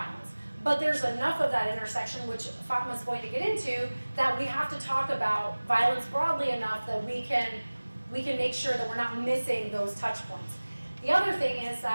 But there's enough of that intersection, which Fatma's going to get into, that we have to talk about violence broadly enough that we can make sure that we're not missing those touch points. The other thing is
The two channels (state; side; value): inverted; both; correlation -1.00